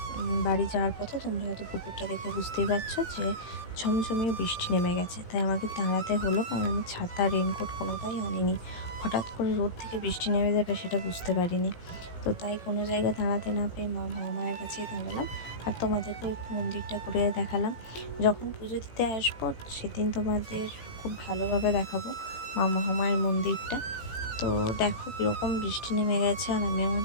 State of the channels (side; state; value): right; late; 18 ms